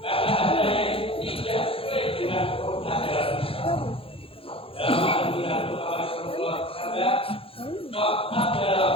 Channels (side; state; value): right; late; 0.27 ms